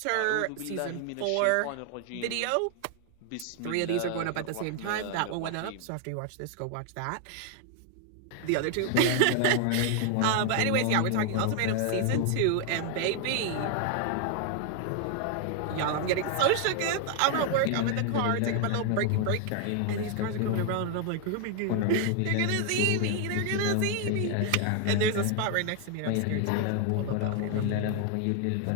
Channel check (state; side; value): different; both; correlation 0.00